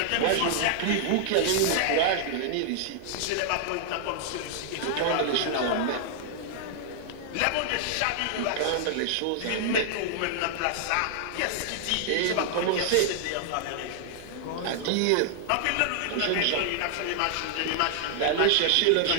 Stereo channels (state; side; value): different; both; correlation -0.01